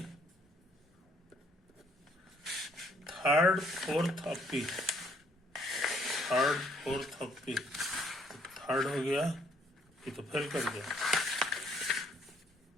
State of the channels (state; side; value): normal; both; correlation 0.65